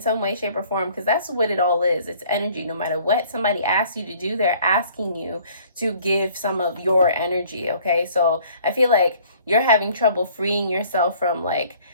way, shape, or form, because that's what it all is. It's energy. No matter what somebody asks you to do, they're asking you to give some of your energy, okay? So I feel like you're having trouble freeing yourself from like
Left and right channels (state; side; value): inverted; both; correlation -0.56